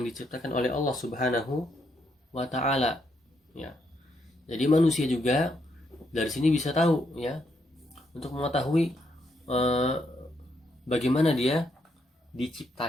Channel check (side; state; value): both; normal; correlation 0.77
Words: diciptakan oleh Allah Subhanahu wa taala, ya. Jadi manusia juga dari sini bisa tahu, ya, untuk mengetahui bagaimana dia